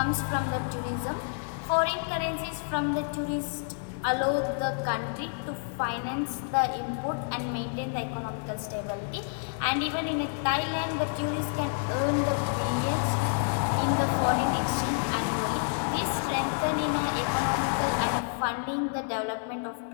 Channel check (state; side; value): silent; right; 59 dB below the other